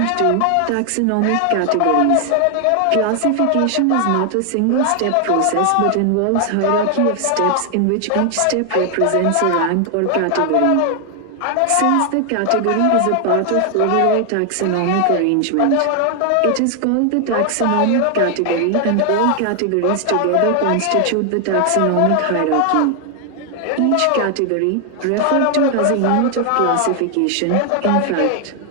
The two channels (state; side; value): different; both; correlation 0.00